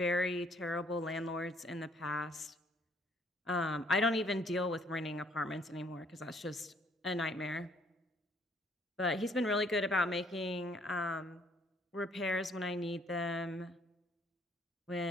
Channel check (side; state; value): both; normal; correlation 0.64